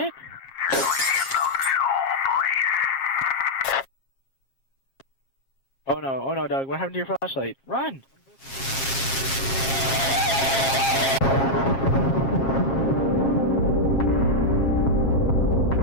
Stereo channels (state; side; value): late; right; 7.4 ms